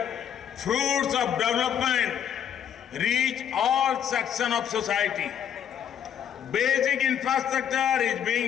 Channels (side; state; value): right; quieter; 9.1 dB